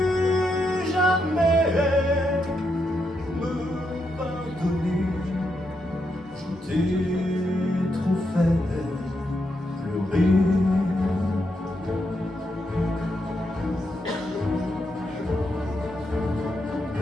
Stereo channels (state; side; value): normal; both; correlation 0.81